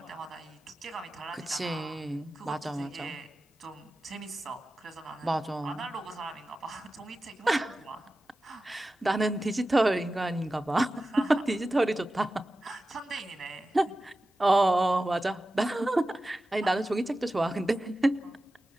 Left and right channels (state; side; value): normal; both; correlation 0.94